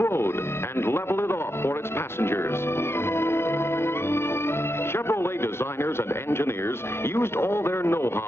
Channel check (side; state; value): right; late; 0.12 ms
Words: and level it off for its passengers. Chevrolet designers and engineers used all their